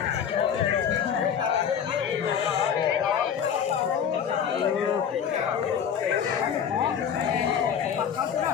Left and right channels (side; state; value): right; quieter; 8.0 dB